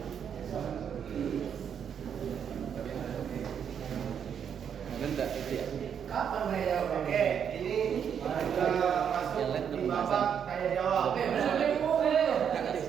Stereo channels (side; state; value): left; quieter; 8.0 dB